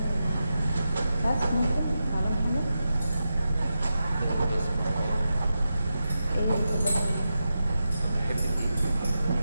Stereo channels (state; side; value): inverted; both; correlation -0.89